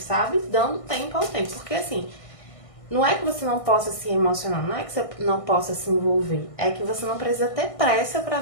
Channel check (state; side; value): late; right; 1.6 ms